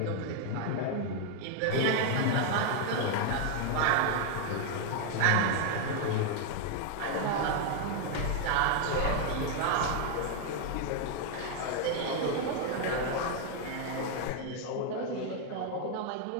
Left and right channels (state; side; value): different; both; correlation 0.00